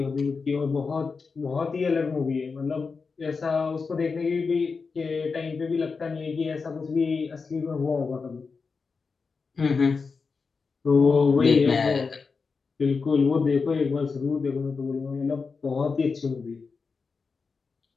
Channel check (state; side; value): quieter; right; 4.8 dB